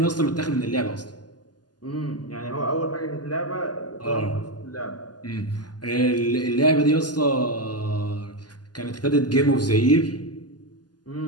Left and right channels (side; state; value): right; late; 0.70 ms